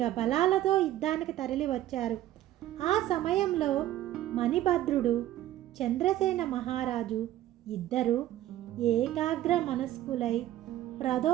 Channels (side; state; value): left; quieter; 13.6 dB